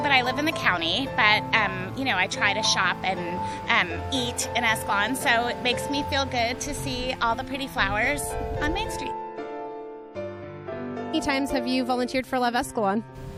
I live in the county, but I try to shop and eat in Escalon, so it makes me feel good to see all the pretty flowers on Main Street. How many times have you volunteered for Love Escalon?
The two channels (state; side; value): identical; both; correlation 1.00